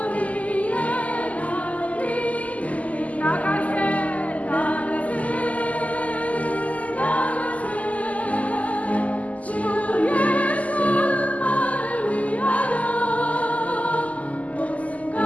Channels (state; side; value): late; right; 0.072 ms